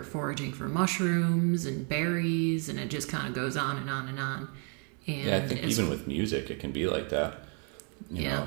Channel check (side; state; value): left; quieter; 38.4 dB